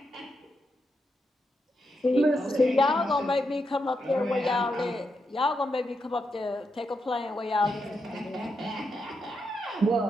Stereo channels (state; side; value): normal; both; correlation 0.83